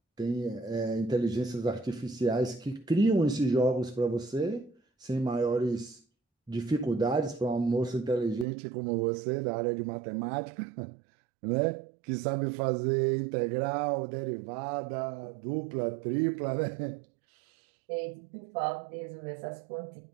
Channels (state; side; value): drops out; left; at 8.5 s